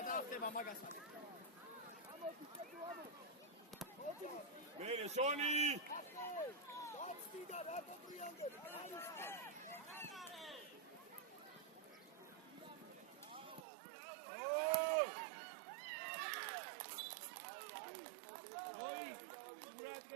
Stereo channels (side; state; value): left; drops out; at 13.7 s